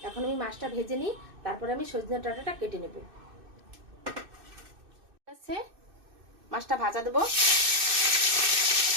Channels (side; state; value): left; late; 2.6 ms